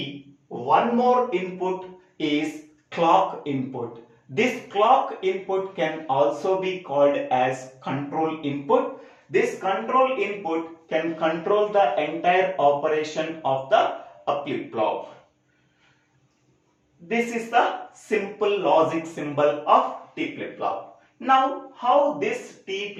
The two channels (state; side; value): identical; both; correlation 1.00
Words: one more input is clock input. This clock input can also be called as control input. This control input can control the entire operation of the flip-flop. This is the simple logic symbol of T flip-flop. Now, how this T